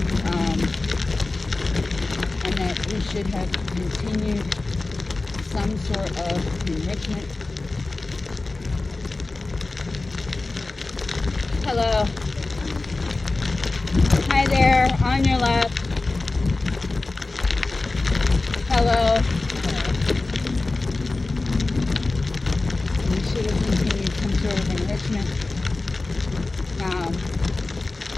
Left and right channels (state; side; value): quieter; right; 3.3 dB